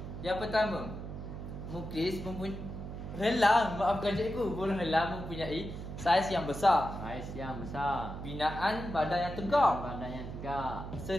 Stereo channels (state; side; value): noise; right; hum, 8 dB below the sound